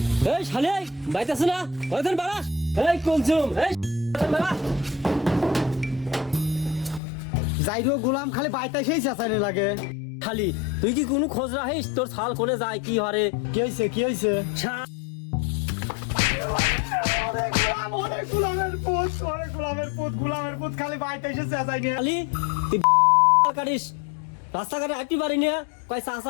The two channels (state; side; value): drops out; right; at 7.0 s